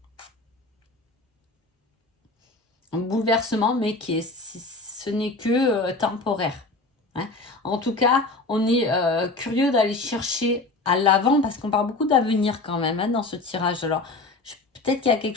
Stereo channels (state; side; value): quieter; right; 3.2 dB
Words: Un bouleversement, mais ce n'est que temporaire, hein. En tout cas, on est curieux d'aller chercher à l'avant parce qu'on parle beaucoup d'avenir quand même, hein, dans ce tirage. Alors, peut-être qu'il y a quelque